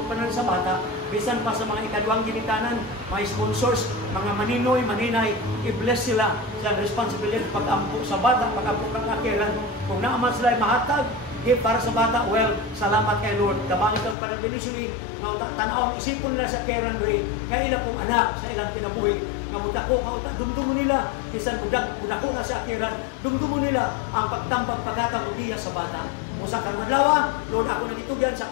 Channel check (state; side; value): drops out; right; at 14.2 s